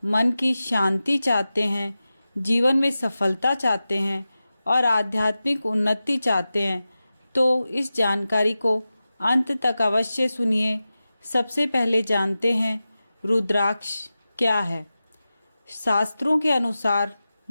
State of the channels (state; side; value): inverted; both; correlation -0.94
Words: मन की शांति चाहते हैं, जीवन में सफलता चाहते हैं और आध्यात्मिक उन्नति चाहते हैं, तो इस जानकारी को अंत तक अवश्य सुनिए। सबसे पहले जानते हैं रुद्राक्ष क्या है। शास्त्रों के अनुसार